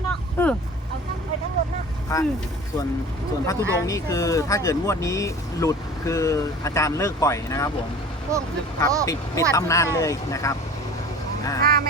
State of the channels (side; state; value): both; normal; correlation 0.41